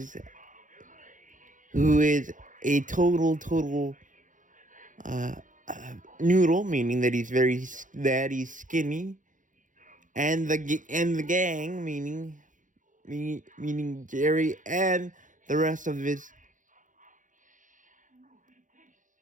a total noodle, meaning that he's skinny, and the gang, meaning Jerry and the rest of the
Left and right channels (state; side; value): late; left; 0.37 ms